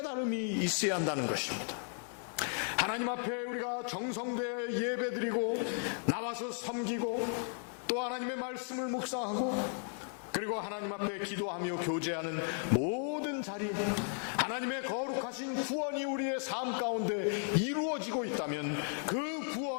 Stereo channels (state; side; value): silent; right; 54 dB below the other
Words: 있어야 한다는 것입니다. 하나님 앞에 우리가 정성되어 예배드리고 나와서 섬기고 또 하나님의 말씀을 묵상하고 그리고 하나님 앞에 기도하며 교제하는 모든 자리, 하나님의 거룩하신 구원이 우리의 삶 가운데 이루어지고 있다면 그